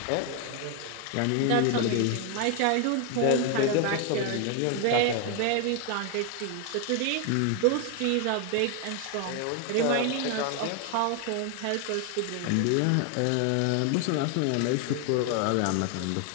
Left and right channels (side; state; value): both; different; correlation 0.01